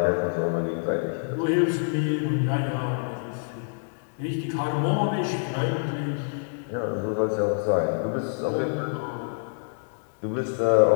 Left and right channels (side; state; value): right; silent; digital silence